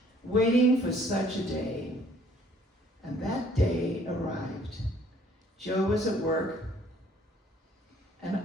waiting for such a day. And that day arrived. Joe was at work, and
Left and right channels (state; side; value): normal; both; correlation 0.60